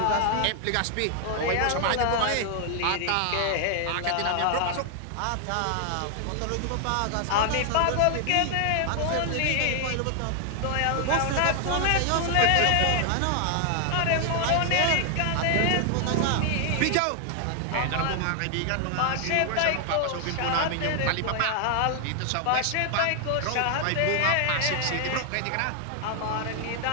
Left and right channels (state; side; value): different; both; correlation 0.00